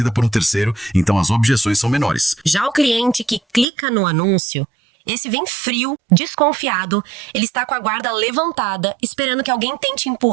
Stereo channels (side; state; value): left; drops out; at 3.7 s